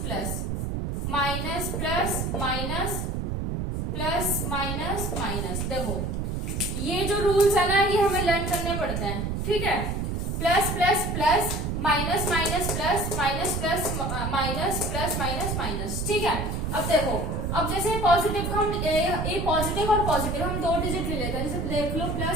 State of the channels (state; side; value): noise; right; rumble, 2 dB below the sound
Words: plus, minus plus minus plus minus minus. देखो ये जो रूल्स है ना ये हमें लर्न करने पड़ते हैं। ठीक है, plus plus plus, minus minus plus, minus plus minus, plus minus minus. ठीक है, अब देखो, अब जैसे पॉजिटिव हम ए पॉजिटिव और पॉजिटिव हम 2 डिजिट ले लेते हैं, जैसे देख लो